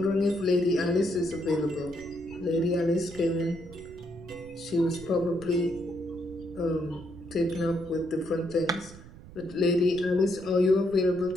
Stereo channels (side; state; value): right; noise; rumble, 18 dB below the sound